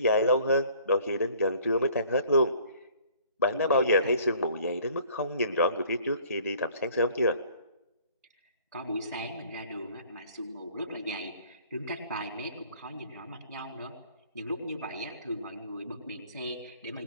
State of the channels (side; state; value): both; inverted; correlation -0.55